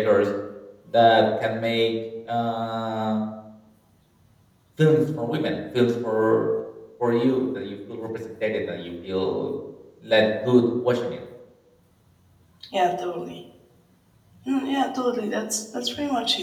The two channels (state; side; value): identical; both; correlation 1.00